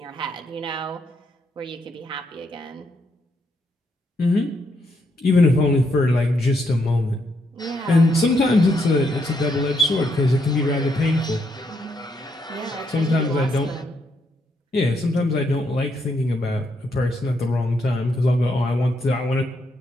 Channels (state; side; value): normal; both; correlation 0.77